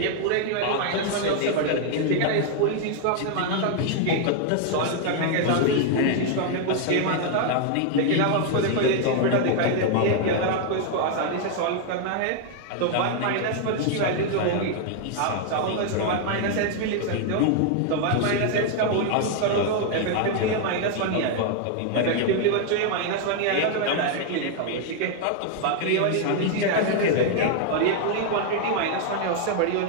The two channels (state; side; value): different; both; correlation 0.00